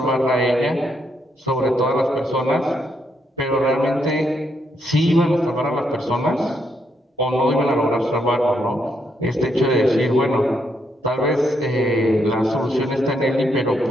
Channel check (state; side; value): normal; both; correlation 0.76